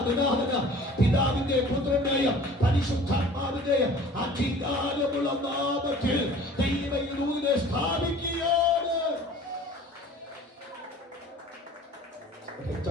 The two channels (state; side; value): normal; both; correlation 0.46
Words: ദിനാഹന പിതാവിന്റെ പുത്രനായ പരിശുദ്ധാത്മാവിന്റെ അധികാരമുള്ള നാമത്തിൽ ദൈവത്തിനെ സ്ഥാപിക്കുകയാണ്.